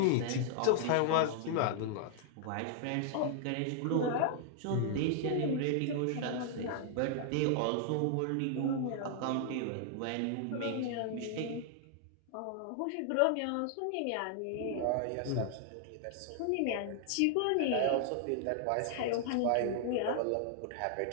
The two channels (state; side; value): different; both; correlation -0.01